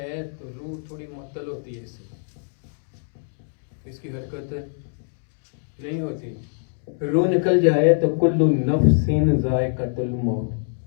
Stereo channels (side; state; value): right; silent; 62 dB below the other